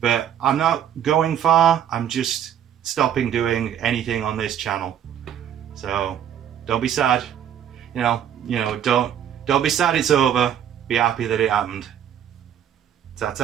I'm not going far, I'm just stopping doing anything on this channel. So don't be sad. You know, don't be sad it's over. Be happy that it happened.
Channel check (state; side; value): quieter; left; 9.8 dB